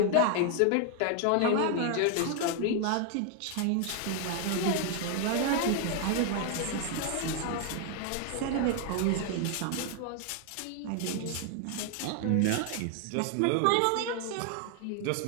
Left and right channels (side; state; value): both; different; correlation 0.00